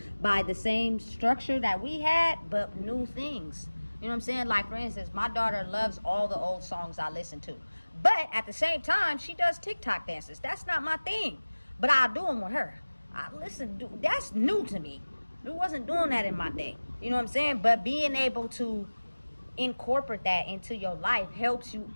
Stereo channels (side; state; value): both; inverted; correlation -1.00